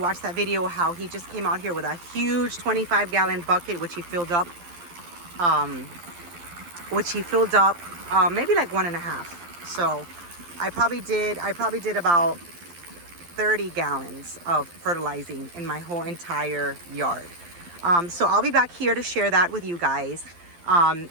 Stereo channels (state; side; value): late; left; 12 ms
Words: that video, how he just came out here with a huge 25-gallon bucket, which he filled up maybe like 1.5. So I probably did about 30 gallons of fertilizing in my whole entire yard. So I'll be back here to share that with you guys,